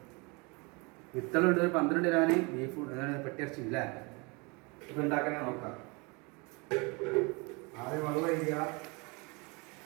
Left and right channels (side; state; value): left; quieter; 28.9 dB